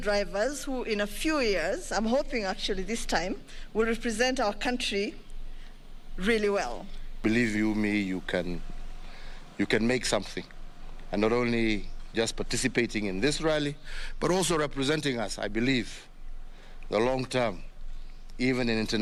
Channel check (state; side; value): identical; both; correlation 1.00